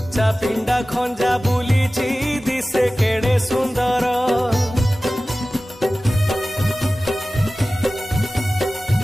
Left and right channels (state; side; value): normal; both; correlation 0.96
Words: पिंडा खंजा बुलीची दिसे केड़े सुंदर